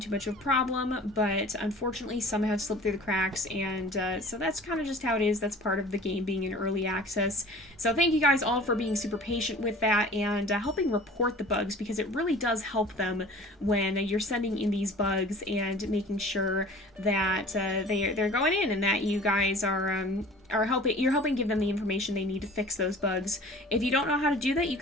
much of a problem, but unfortunately some have slipped through the cracks, and so that's kind of just how it is. That's part of the game being in early access. So thank you guys all for being super patient with that and helping report the bugs, because it really does help them when you're sending in these bugs and making sure that they're going in and that you guys are helping give them the information they need to fix those bugs. If you don't know how to do that, you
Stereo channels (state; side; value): normal; both; correlation 0.44